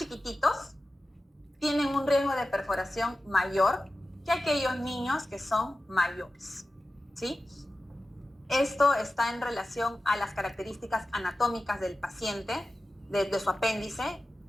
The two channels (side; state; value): both; normal; correlation 0.94